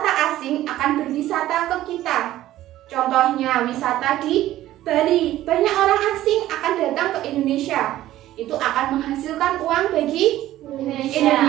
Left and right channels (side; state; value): left; quieter; 14.3 dB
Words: asing akan berwisata ke kita. Contohnya wisata di Bali, banyak orang asing akan datang ke Indonesia. Itu akan menghasilkan uang bagi